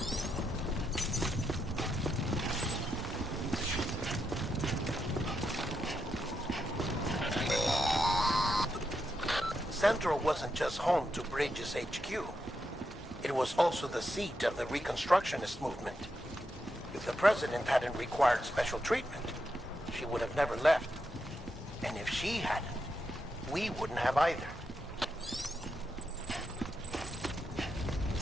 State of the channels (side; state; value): both; normal; correlation 0.84